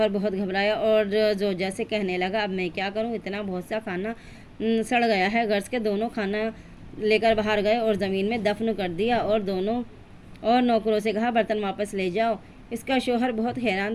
بہت گھبرایا اور زوجہ سے کہنے لگا اب میں کیا کروں، اتنا بہت سا کھانا سڑ گیا ہے۔ غرض کے دونوں کھانا لے کر باہر گئے اور زمین میں دفن کر دیا اور نوکروں سے کہا برتن واپس لے جاؤ۔ اس کا شوہر بہت حیران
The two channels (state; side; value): identical; both; correlation 1.00